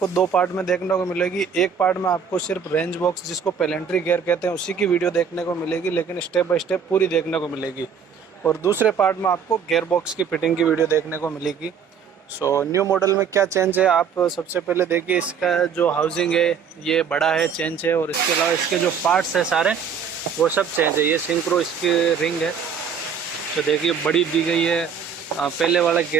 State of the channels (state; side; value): quieter; left; 6.8 dB